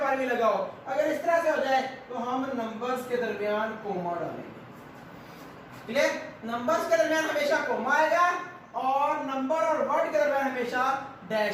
भी लगा हो, अगर इस तरह से हो जाए तो हम नंबर्स के दरमियान कोमा डालेंगे। क्लियर? नंबर्स के दरमियान हमेशा कोमा आएगा, और नंबर और वर्ड के दरमियान हमेशा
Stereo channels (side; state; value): both; identical; correlation 1.00